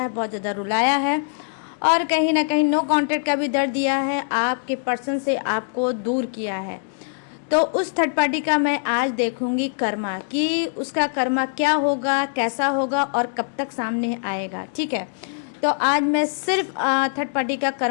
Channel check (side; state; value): right; silent; digital silence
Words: है, बहुत ज़्यादा रुलाया है, और कहीं ना कहीं नो कॉन्टेक्ट का भी दर्द दिया है, आपके पर्सन से आपको दूर किया है। तो उस थर्ड पार्टी का मैं आज देखूंगी कर्मा, कि उसका कर्मा क्या होगा, कैसा होगा और कब तक सामने आएगा। ठीक है, तो आज मैं सिर्फ थर्ड पार्टी का